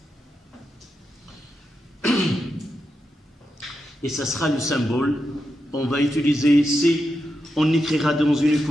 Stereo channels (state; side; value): normal; both; correlation 0.87